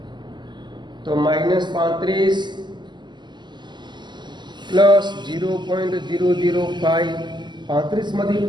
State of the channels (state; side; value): late; left; 0.21 ms